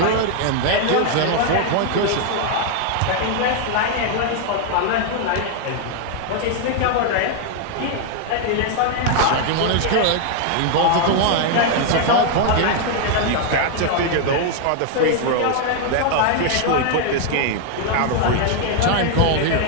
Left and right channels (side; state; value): both; different; correlation 0.00